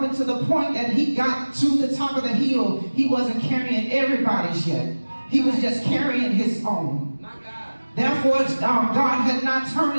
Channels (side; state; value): both; inverted; correlation -1.00